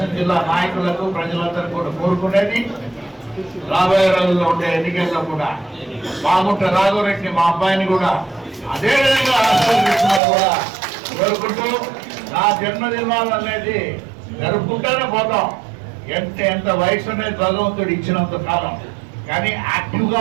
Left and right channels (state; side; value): drops out; left; at 10.2 s